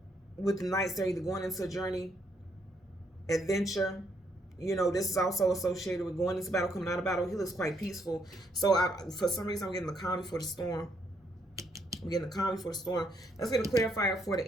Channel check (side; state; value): both; normal; correlation 0.73